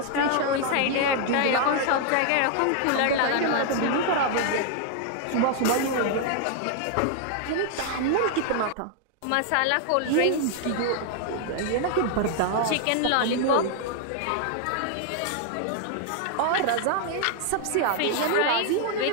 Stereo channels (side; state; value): both; different; correlation 0.00